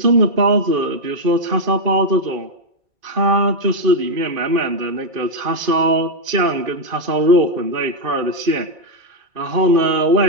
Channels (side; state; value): left; late; 2.5 ms